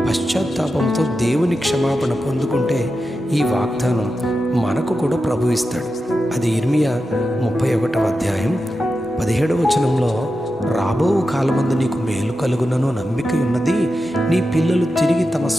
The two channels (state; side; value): normal; both; correlation 0.90